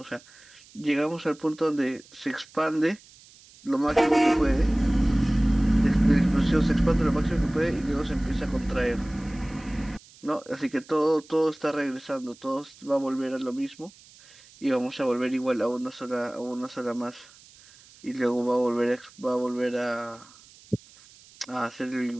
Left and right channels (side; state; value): right; noise; hiss, 24 dB below the sound